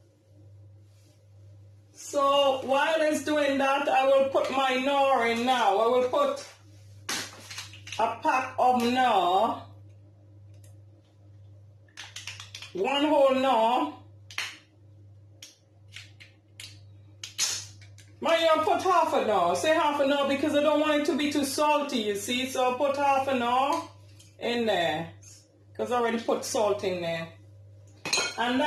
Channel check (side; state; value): both; identical; correlation 1.00